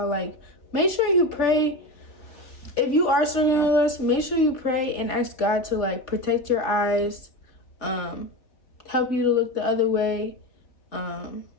like, make sure you pray. If you are struggling with lust, make sure you pray and ask God to like protect your eyes, help you to look the other way.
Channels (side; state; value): right; late; 3.4 ms